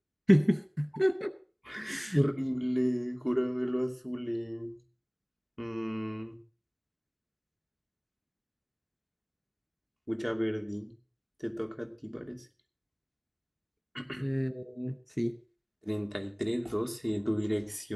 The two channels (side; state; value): both; identical; correlation 1.00